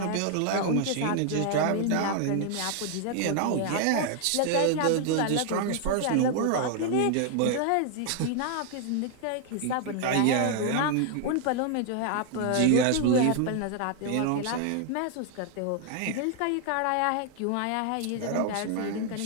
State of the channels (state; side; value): different; both; correlation 0.00